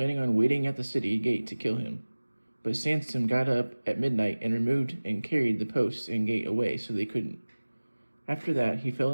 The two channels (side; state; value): both; inverted; correlation -1.00